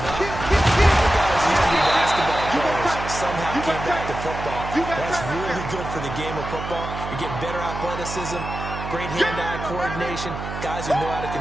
up. All guys used to be basketball players. Somehow came back to football. That's really good for the game of football. You're getting better athleticism, great hand-eye coordination, guys who know how to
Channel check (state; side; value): noise; right; hum, 7 dB below the sound